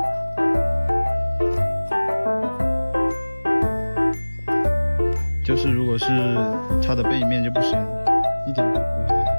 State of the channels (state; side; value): inverted; both; correlation -1.00